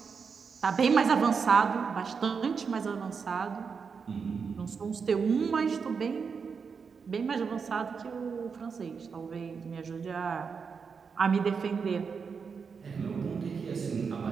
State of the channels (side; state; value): left; quieter; 5.7 dB